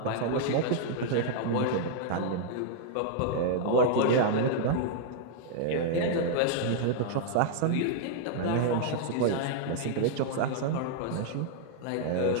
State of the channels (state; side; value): different; both; correlation -0.01